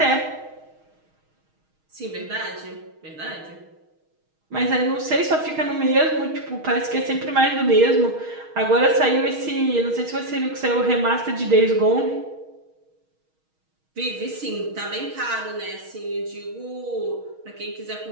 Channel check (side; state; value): left; late; 6.4 ms